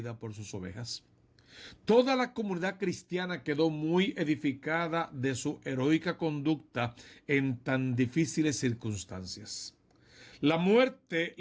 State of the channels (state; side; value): identical; both; correlation 1.00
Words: por sus ovejas. Toda la comunidad cristiana quedó muy edificada de su heroica conducta en tan difíciles circunstancias. La muerte